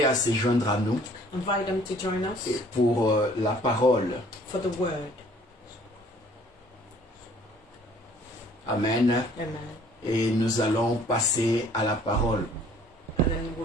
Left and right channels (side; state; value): both; normal; correlation 0.56